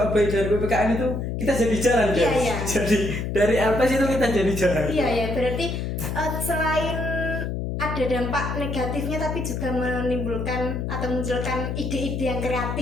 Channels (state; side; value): noise; left; hum, 3 dB below the sound